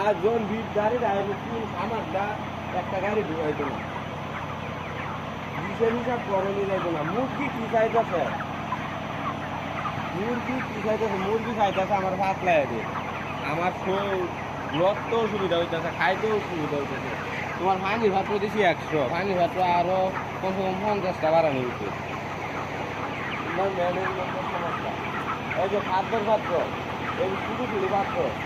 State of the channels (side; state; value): both; identical; correlation 1.00